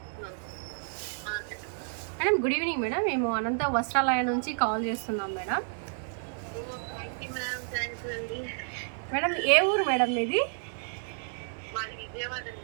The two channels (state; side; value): silent; left; 57 dB below the other